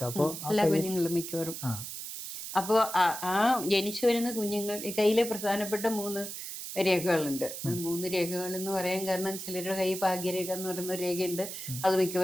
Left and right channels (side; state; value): right; noise; hiss, 8 dB below the sound